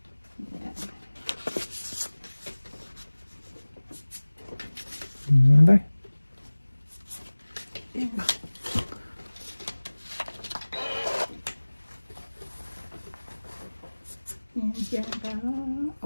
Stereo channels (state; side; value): inverted; both; correlation -1.00